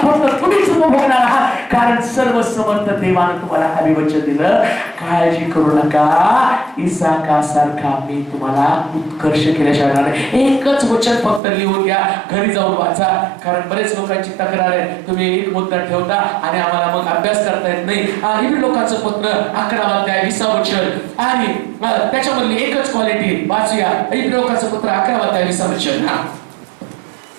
फक्त तुम्हीच उपभोगणार आहात. कारण सर्वसमर्थ देवानं तुम्हाला अभिवचन दिलं, काळजी करू नका, इसाकासारखा मी तुम्हाला उत्कर्ष केल्याशिवाय नाही. एकच वचन फक्त लिहून घ्या, घरी जाऊन वाचा. कारण बरेच लोकांची तक्रार आहे, तुम्ही एक मुद्दा ठेवता आणि आम्हाला मग अभ्यास करता येत नाही. इब्री लोकांचं पत्र 11 अध्याय 20 वचन आणि त्याच्यामधली एकच क्वालिटी वाचूया. इब्री लोकांचं पत्र 11 अध्याय 20 वचन.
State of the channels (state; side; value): drops out; left; at 11.4 s